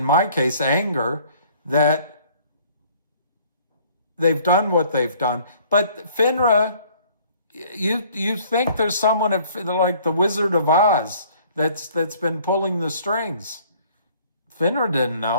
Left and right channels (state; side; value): inverted; both; correlation -0.57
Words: my case, anger that they've done what they've done. But FINRA, you think there's someone like the Wizard of Oz that's been pulling the strings. FINRA didn't